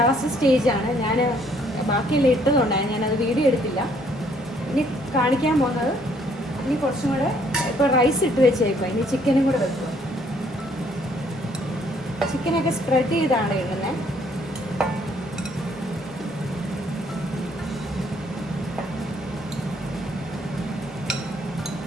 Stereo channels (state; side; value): normal; both; correlation 0.65